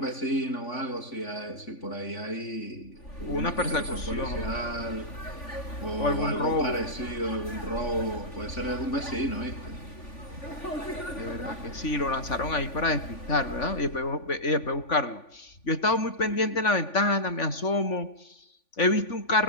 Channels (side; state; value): right; late; 3.5 ms